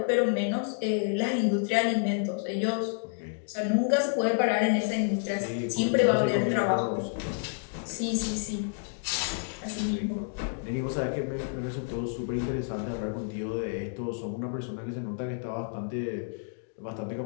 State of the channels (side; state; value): right; silent; digital silence